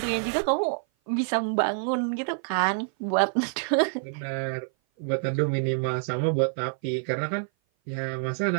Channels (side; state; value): left; silent; 56 dB below the other